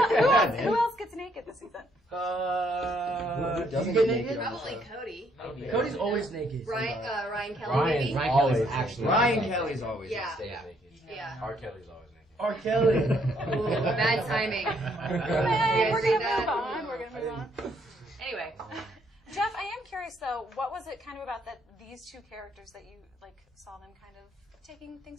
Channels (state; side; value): normal; both; correlation 0.69